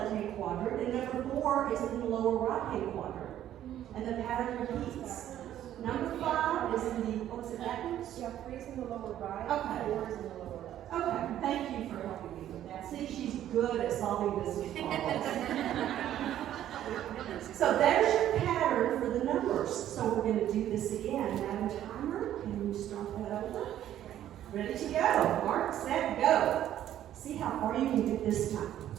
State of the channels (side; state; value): left; quieter; 11.8 dB